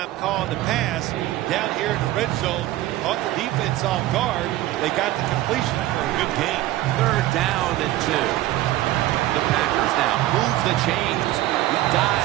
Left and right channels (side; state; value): left; quieter; 15.4 dB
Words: calling the pass down here in the red zone. Caught the defense off guard. They got the completion for a good game. 3rd down and 2. The Packers now move the chains. He